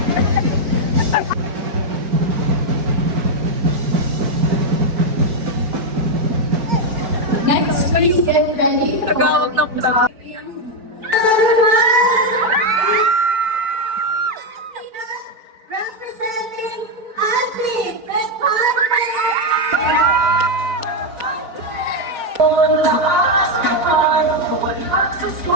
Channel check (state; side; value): late; left; 4.5 ms